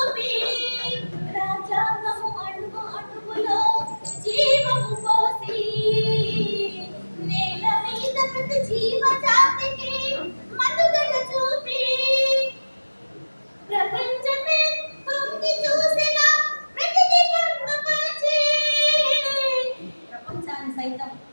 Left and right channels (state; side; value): inverted; both; correlation -1.00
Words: రాజ్యాంగము అణువు అణువులో జీవము పోసి నేల మీద ప్రతి జీవజాతికి మనుగడ చూపి ప్రపంచమే తొంగి చూసిన ప్రతిదీ పొందుపరిచి ప్రపంచాన్ని సైతం